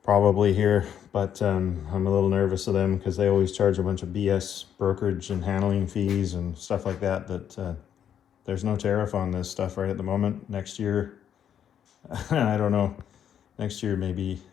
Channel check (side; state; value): right; quieter; 9.2 dB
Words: probably here, but I'm a little nervous of them because they always charge a bunch of BS brokerage and handling fees and stuff like that, there's no tariff on this stuff right at the moment. Next year, I don't know. Next year maybe